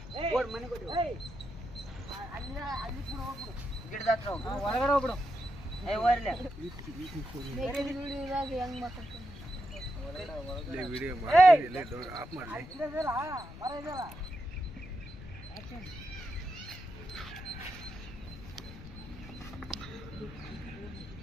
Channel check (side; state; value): left; noise; rumble, 14 dB below the sound